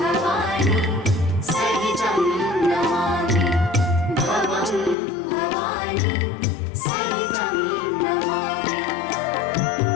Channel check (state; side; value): drops out; right; at 5.0 s